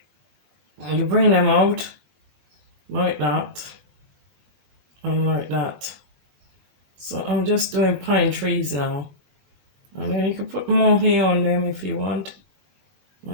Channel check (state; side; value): late; left; 20 ms